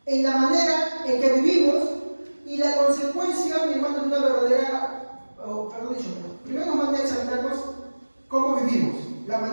en la manera en que vivimos y la consecuencia, mi hermano, de una verdadera, primero nos manda a examinarnos cómo vivimos, la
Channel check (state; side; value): inverted; both; correlation -1.00